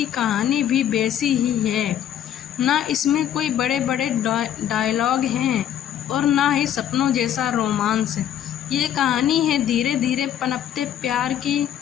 कहानी भी वैसी ही है। ना इसमें कोई बड़े बड़े डायलॉग हैं और ना ही सपनों जैसा रोमांस। ये कहानी है धीरे धीरे पनपते प्यार की,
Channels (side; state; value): right; quieter; 10.4 dB